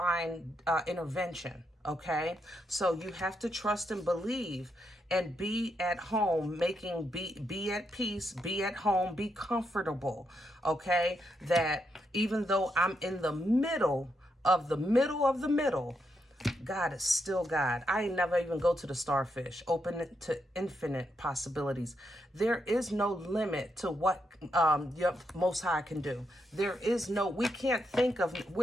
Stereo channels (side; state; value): both; normal; correlation 0.81